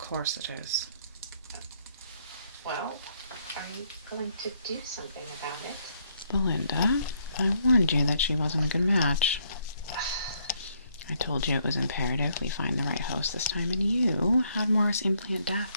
it is. Well, are you going to do something about it? Belinda, I warned you that she wasn't a good match. I told you it was imperative we find the right host this time, and you had Morris implant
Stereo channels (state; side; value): inverted; both; correlation -0.71